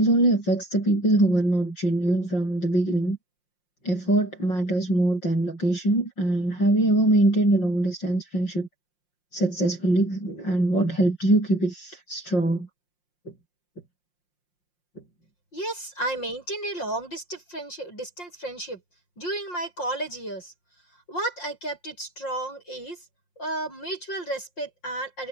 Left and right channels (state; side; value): late; right; 5.6 ms